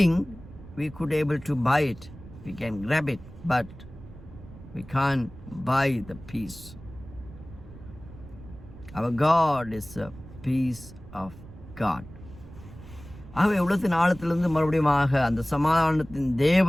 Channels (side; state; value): right; noise; rumble, 17 dB below the sound